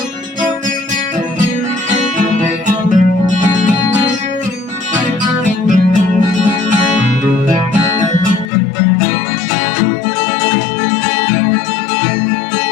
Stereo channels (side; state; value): right; drops out; at 8.5 s